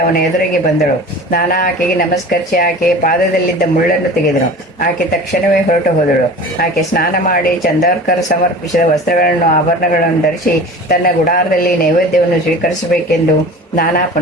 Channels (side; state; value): both; normal; correlation 0.38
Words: ಅವನ ಎದುರಿಗೆ ಬಂದಳು. ನಾನಾ ಆಕೆಗೆ ನಮಸ್ಕರಿಸಿ ಆಕೆಯ ಪಾದದಲ್ಲಿದ್ದ ಮುಳ್ಳನ್ನು ತೆಗೆದನು. ಆಕೆ ತಕ್ಷಣವೇ ಹೊರಟು ಹೋದಳು. ಆಕೆ ಸ್ನಾನ ಮಾಡಿ ಚಂದೋರ್ಕರ್ ಸಮರ್ಪಿಸಿದ ವಸ್ತ್ರಗಳನ್ನು ಆಭರಣಗಳನ್ನು ಧರಿಸಿ ತನ್ನ ಗುಡಾರದಲ್ಲಿ ನೈವೇದ್ಯವನ್ನು ಸ್ವೀಕರಿಸಬೇಕೆಂದು ನಾನಾ